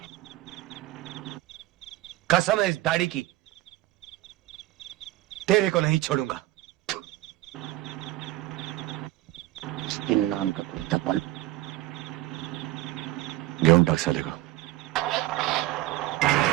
कसम है इस दाढ़ी की, तेरे को नहीं छोड़ूंगा। नाम का कुत्ता पाल घेऊन टाक साले को।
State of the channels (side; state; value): left; quieter; 16.7 dB